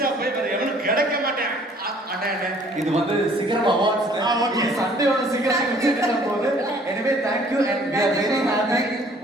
போய் வேற எவனும் கிடைக்க மாட்டேன். இது வந்து சிகரம் அவார்ட்ஸ். சண்டேவோட சிகரம் போது. எனவே thank you and we are very happy.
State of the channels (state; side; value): normal; both; correlation 0.57